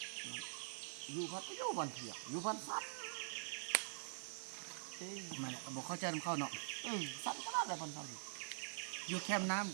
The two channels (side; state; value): left; silent; digital silence